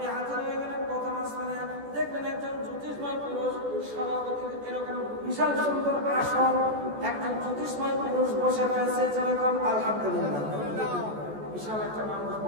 হাজির হয়ে গেলেন প্রথম আসমানে। দেখলেন একজন জ্যোতিষময় পুরুষ, সভাপতি এরকম বিশাল সুন্দর আসন, একজন জ্যোতিষময় পুরুষ বসে রয়েছে। যেরকম আলহামদুলিল্লাহ, বিশাল একটা মানুষ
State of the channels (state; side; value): late; left; 14 ms